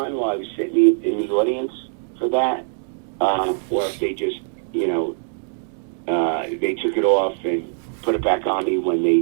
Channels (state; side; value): silent; left; digital silence